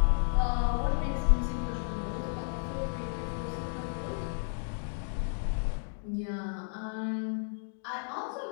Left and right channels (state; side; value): silent; right; digital silence